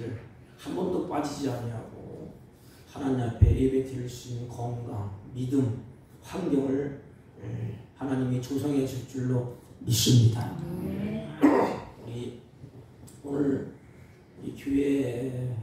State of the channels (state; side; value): identical; both; correlation 1.00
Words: 한 번도 빠지지 아니하고 하나님 앞에 예배 드릴 수 있는 건강, 믿음, 환경을 하나님이 조성해 줄 줄로 믿습니다. 우리 오늘 우리 교회의